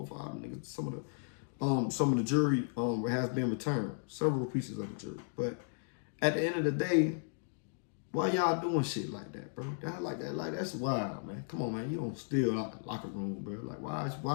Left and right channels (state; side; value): silent; right; digital silence